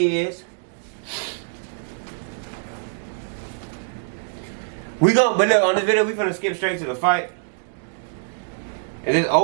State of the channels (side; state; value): left; silent; digital silence